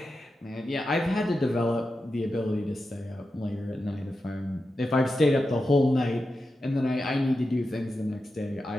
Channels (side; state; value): both; normal; correlation 0.90